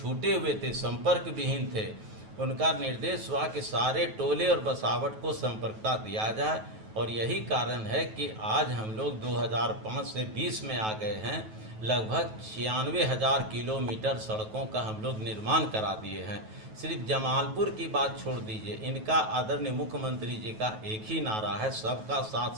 हुए थे, संपर्क विहीन थे, उनका निर्देश हुआ कि सारे टोले और बसावट को संपर्कता दिया जाए। और यही कारण है कि आज हम लोग 2005 से 20 में आ गए हैं, लगभग 96,000 किलोमीटर सड़कों का हम लोग निर्माण करा दिए हैं। सिर्फ जमालपुर की बात छोड़ दीजिए, इनका आदरणीय मुख्यमंत्री जी का एक ही नारा है, सबका साथ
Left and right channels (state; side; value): late; left; 9.3 ms